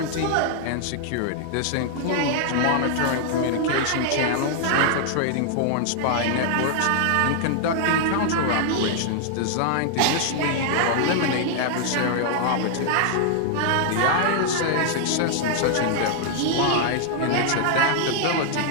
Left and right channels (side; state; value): both; different; correlation -0.01